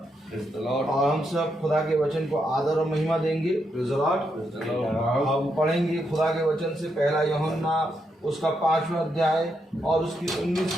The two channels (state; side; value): normal; both; correlation 0.81